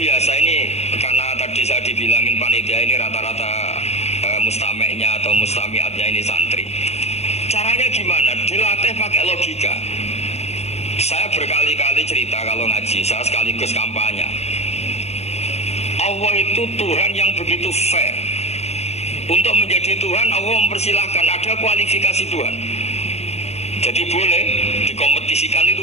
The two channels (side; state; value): right; late; 0.31 ms